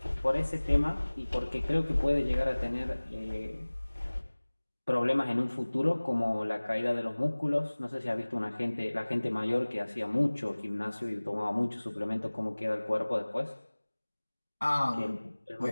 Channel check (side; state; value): both; inverted; correlation -1.00